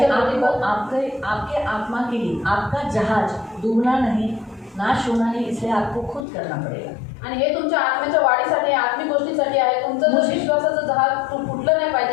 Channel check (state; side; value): drops out; right; at 6.2 s